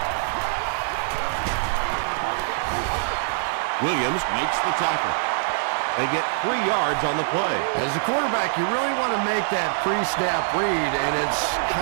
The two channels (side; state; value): left; silent; digital silence